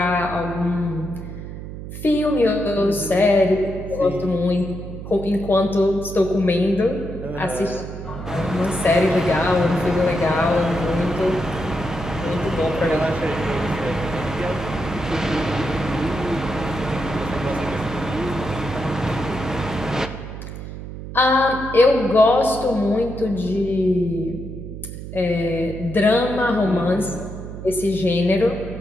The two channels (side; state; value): right; noise; hum, 10 dB below the sound